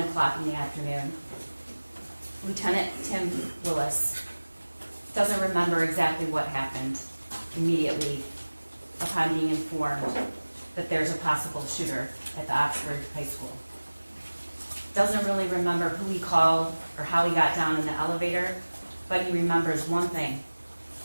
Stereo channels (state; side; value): inverted; both; correlation -1.00